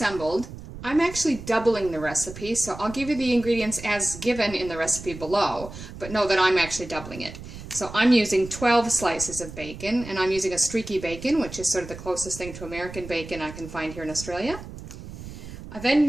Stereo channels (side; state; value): right; noise; rumble, 13 dB below the sound